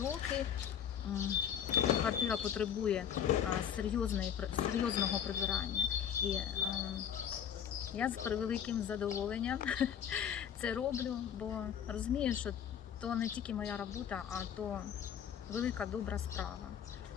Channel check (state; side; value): quieter; right; 8.8 dB